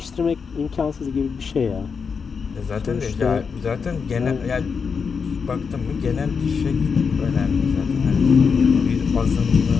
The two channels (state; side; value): quieter; right; 5.7 dB